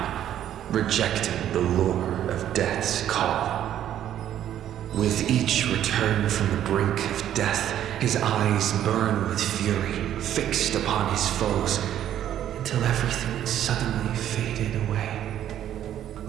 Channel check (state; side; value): quieter; left; 11.1 dB